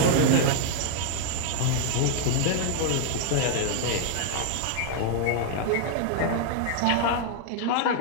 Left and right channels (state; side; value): different; both; correlation 0.00